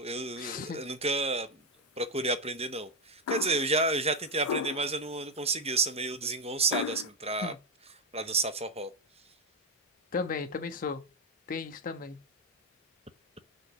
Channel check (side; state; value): both; normal; correlation 0.05